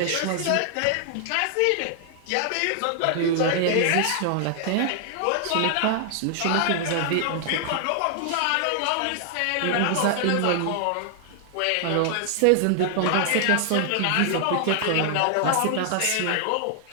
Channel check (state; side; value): different; both; correlation 0.00